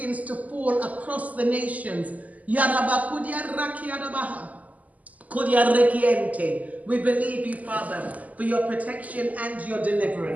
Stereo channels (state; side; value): late; left; 0.076 ms